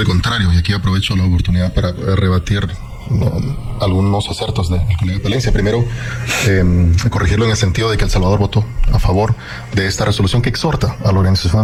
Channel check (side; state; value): both; identical; correlation 1.00